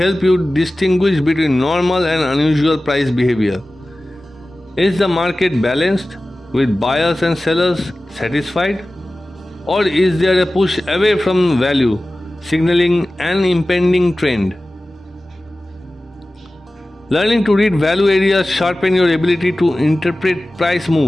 you distinguish between normal and unusual price behavior. Is the market balanced, with buyers and sellers satisfied? Or is there a push away from value, signaling an impending trend? Learning to read value areas sharpen your ability to interpret price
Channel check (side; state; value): both; normal; correlation 0.96